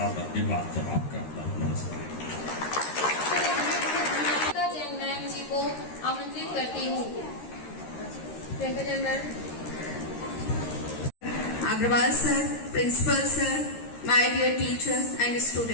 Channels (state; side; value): late; right; 13 ms